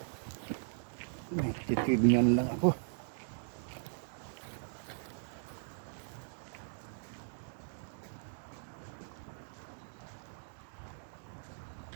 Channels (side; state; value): left; silent; digital silence